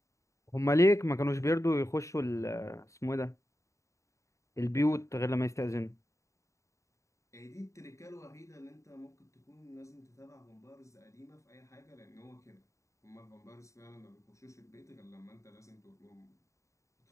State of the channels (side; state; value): right; late; 0.15 ms